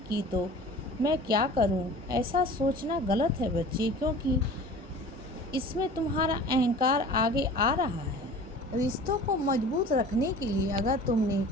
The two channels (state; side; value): normal; both; correlation 0.42